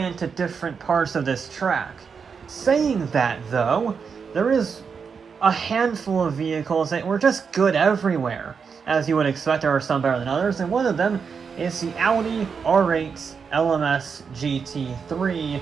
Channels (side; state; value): left; quieter; 6.0 dB